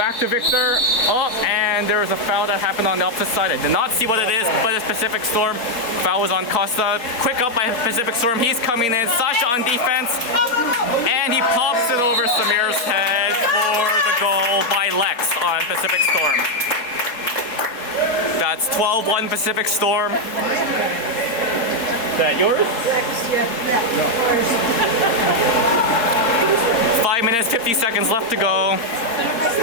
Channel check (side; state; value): right; late; 4.3 ms